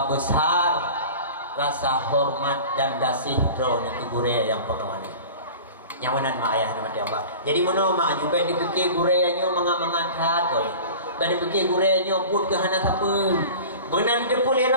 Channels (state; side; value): inverted; both; correlation -0.38